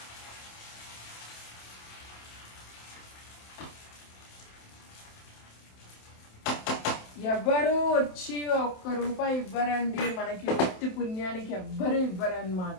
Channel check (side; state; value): right; late; 27 ms